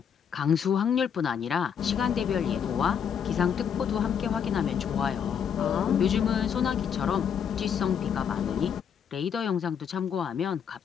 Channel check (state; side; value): quieter; right; 7.8 dB